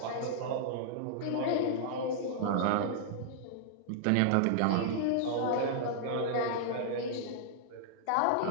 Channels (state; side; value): different; both; correlation -0.01